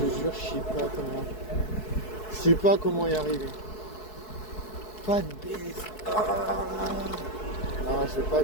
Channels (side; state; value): right; late; 4.7 ms